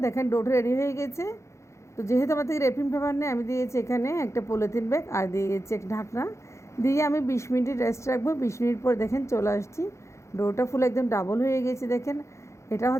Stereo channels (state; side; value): late; right; 0.14 ms